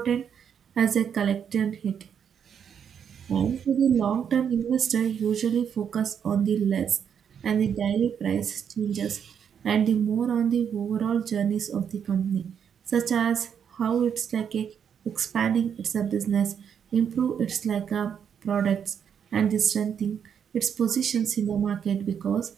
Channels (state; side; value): quieter; left; 7.9 dB